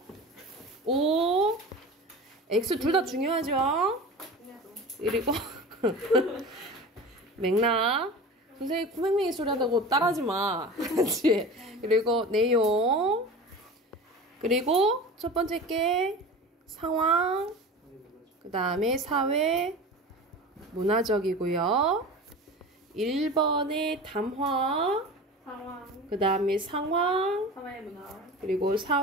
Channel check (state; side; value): normal; both; correlation 0.34